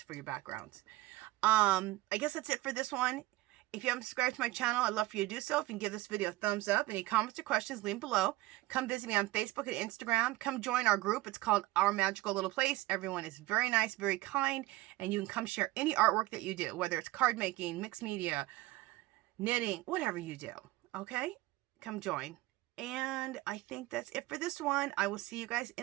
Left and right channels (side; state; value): left; quieter; 18.3 dB